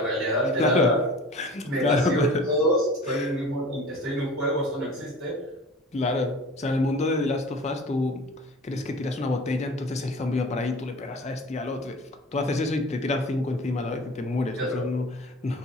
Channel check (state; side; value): normal; both; correlation 0.41